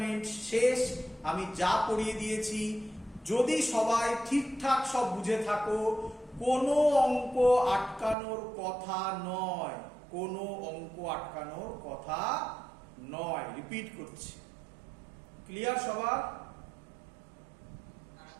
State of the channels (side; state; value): left; drops out; at 8.2 s